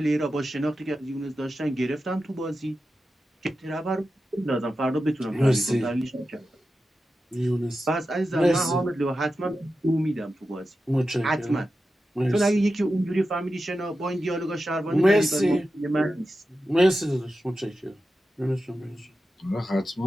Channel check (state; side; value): normal; both; correlation 0.91